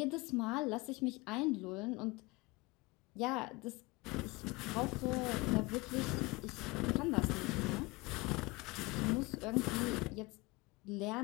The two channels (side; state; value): right; quieter; 24.1 dB